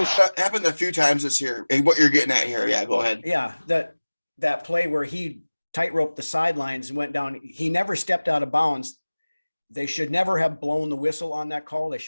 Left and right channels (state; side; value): inverted; both; correlation -1.00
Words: That happened a few times this year. What you're getting at here. Yeah, go ahead. Yeah, that play where he tightroped the sidelines and went down. He never stepped out of bounds. They should never have blown the whistle on that call. They